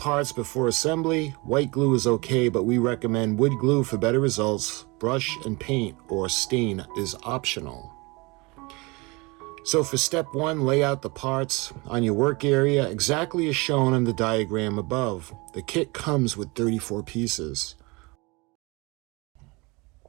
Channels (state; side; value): quieter; left; 25.9 dB